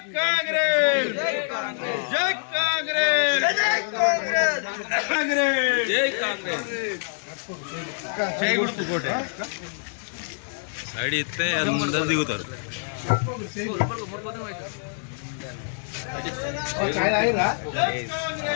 కాంగ్రెస్ జై కాంగ్రెస్ జై కాంగ్రెస్ చేయకూడదు కోటే సైడ్ ఇస్తే అది ముందర దిగుతారు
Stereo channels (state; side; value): silent; right; 61 dB below the other